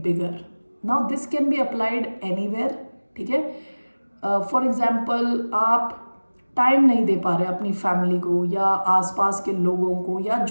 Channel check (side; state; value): both; inverted; correlation -1.00